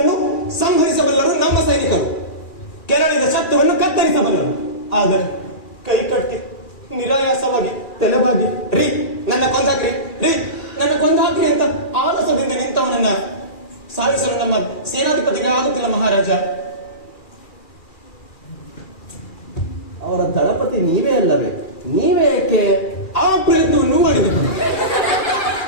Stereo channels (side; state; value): right; late; 2.4 ms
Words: ಸಂಹರಿಸಬಲ್ಲರು ನಮ್ಮ ಸೈನಿಕರು. ಕೆರಳಿದ ಶತ್ರುವನ್ನು ಕತ್ತರಿಸಬಲ್ಲರು. ಆದರೆ ಕೈ ಕಟ್ಟಿ ನಿರಾಯಾಸವಾಗಿ ತೆಲವಾಗಿ ರೀ ನನ್ನ ಕೊಂದಾಕ್ರಿ, ರೀ ನನ್ನ ಕೊಂದಾಕ್ರಿ ಅಂತ ಆಲಸದಿಂದ ನಿಂತವನನ್ನ ಸಾಧಿಸಲು ನಮ್ಮ ಸೇನಾಧಿಪತಿಗೆ ಆಗುತ್ತಿಲ್ಲ ಮಹಾರಾಜ. ಅವರ ದಳಪತಿ ನೀವೇ ಅಲ್ಲವೇ? ನೀವೇ ಏಕೆ ಆ ಪ್ರಯತ್ನವನ್ನು ಮಾಡಿದರು?